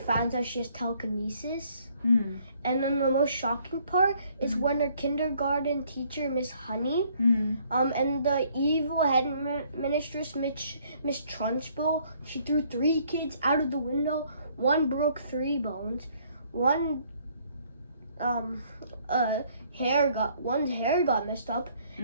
out she has telekinesis. And then the most shocking part is when her kindergarten teacher, Miss Honey, and the evil headmistress, Miss Trunchbull, she threw 3 kids out of the window. One broke 3 bones. One's hair got messed up,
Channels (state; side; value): inverted; both; correlation -0.64